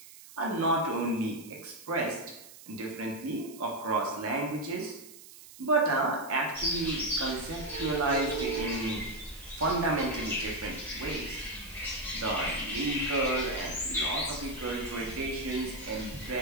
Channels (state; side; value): noise; right; hiss, 18 dB below the sound